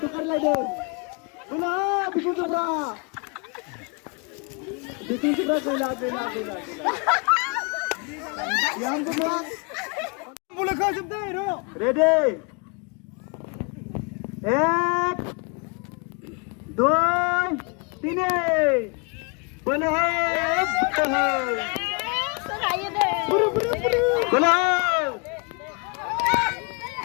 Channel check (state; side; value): quieter; right; 33.4 dB